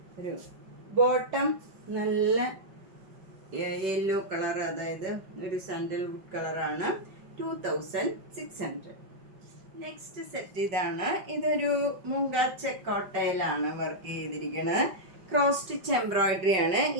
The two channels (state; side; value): late; left; 5.3 ms